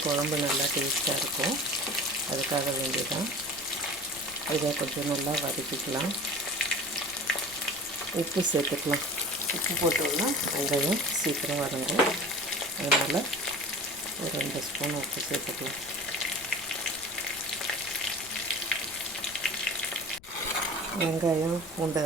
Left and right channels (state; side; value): noise; left; rumble, 22 dB below the sound